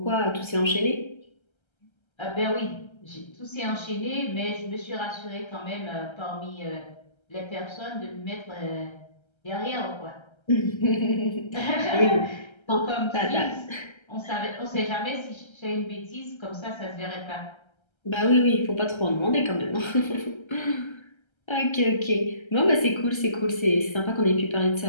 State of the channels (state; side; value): late; right; 1.3 ms